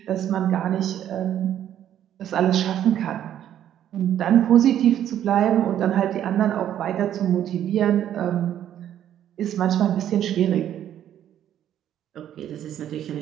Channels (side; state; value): left; quieter; 10.8 dB